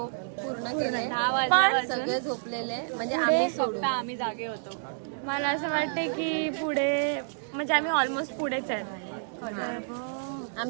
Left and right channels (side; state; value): left; silent; digital silence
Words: पूर्ण केले. पण सगळे झोपलेले, म्हणजे आम्ही फक्त आम्ही जागे होतो. मला असं वाटतंय की पुढे म्हणजे आम्ही ऑलमोस्ट पुढेच आहेत.